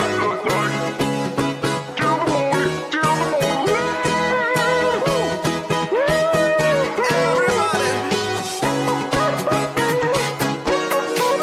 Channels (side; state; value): both; identical; correlation 1.00